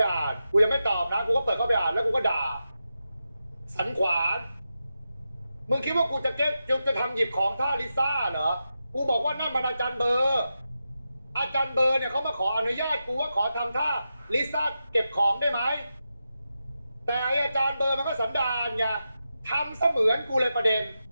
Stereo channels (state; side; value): inverted; both; correlation -0.89